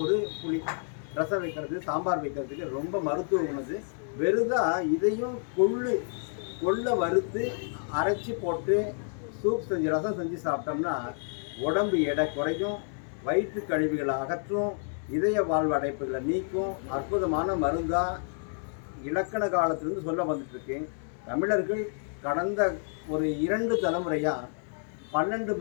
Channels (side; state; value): right; silent; 58 dB below the other